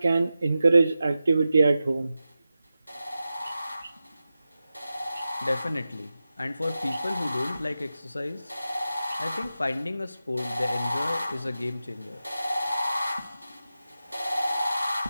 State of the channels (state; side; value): inverted; both; correlation -0.92